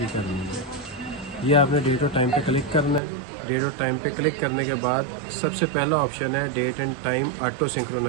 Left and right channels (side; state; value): left; drops out; at 3.0 s